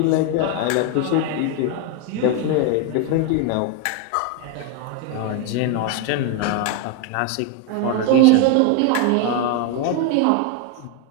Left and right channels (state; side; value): different; both; correlation 0.01